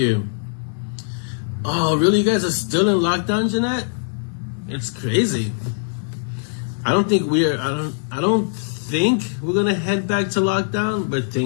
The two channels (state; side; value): silent; right; 58 dB below the other